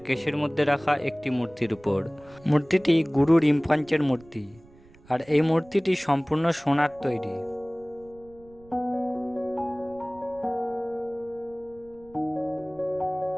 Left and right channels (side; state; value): right; noise; rumble, 25 dB below the sound